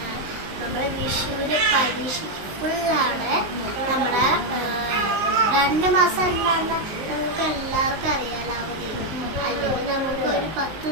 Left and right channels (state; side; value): late; left; 19 ms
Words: നമ്മുടെ വിഷുവിന് പരീക്ഷയ്ക്ക് ഫുള്ളാണ്. നമ്മുടെ 2 മാസം എന്താണെന്ന് നമുക്ക് എല്ലാവർക്കും അറിയാലോ അവധി. അല്ലെങ്കിൽ നമുക്ക് ഒരു 10